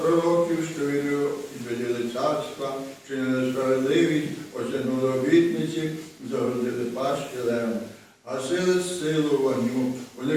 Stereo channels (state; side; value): identical; both; correlation 1.00